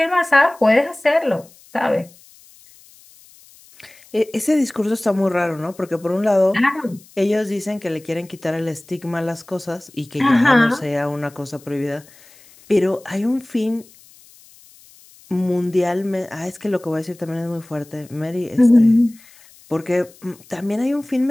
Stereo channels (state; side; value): noise; left; hiss, 26 dB below the sound